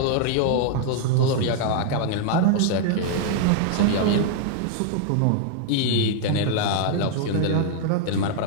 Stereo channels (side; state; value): both; different; correlation -0.01